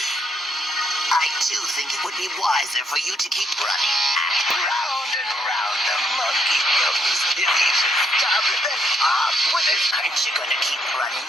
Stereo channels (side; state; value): both; normal; correlation 0.73